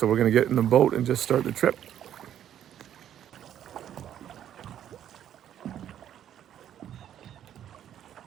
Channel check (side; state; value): left; quieter; 10.5 dB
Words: we're going to get in the boat and just start the trip.